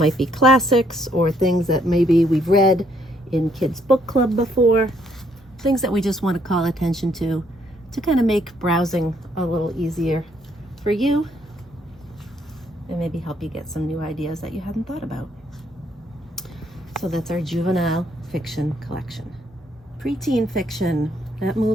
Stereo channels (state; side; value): normal; both; correlation 0.70